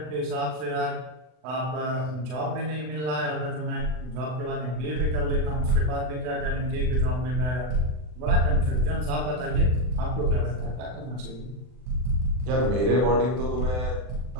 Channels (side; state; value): left; late; 40 ms